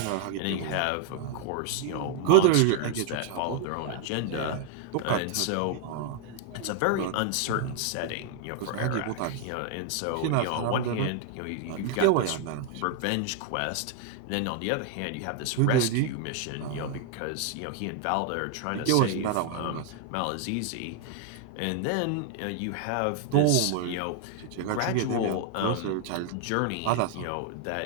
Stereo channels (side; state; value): both; different; correlation 0.00